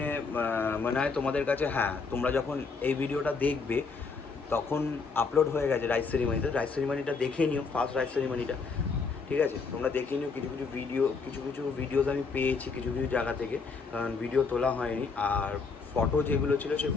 মনে হয় তোমাদের কাছে, হ্যাঁ তোমরা যখন এই ভিডিওটা দেখবে তখন আপলোড হয়ে গেছে রাইস সেরিমনিতে। রাইস সেরিমনিটা দেখে নিও, ফার্স্ট রাইস সেরিমনিটা, ঠিক আছে। তোমরা দেখে নিও। কিছু কিছু ভিডিওস আমি পেয়েছি কিছু জায়গা থেকে, কারণ ভিডিও তোলা হয়নি। আর ফটো যেগুলো ছিল সেই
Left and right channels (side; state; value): right; quieter; 4.7 dB